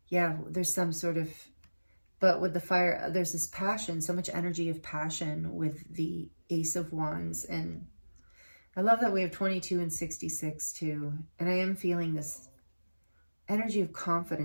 yeah, there's some sort of But with the fire, there's this passion, so much energy of passion with the Ace of Wands. And I love that we have 22 and 66 too. And I am feeling this energy of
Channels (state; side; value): inverted; both; correlation -1.00